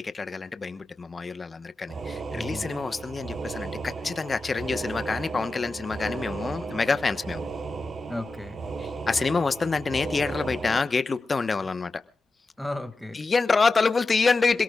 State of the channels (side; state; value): right; quieter; 3.2 dB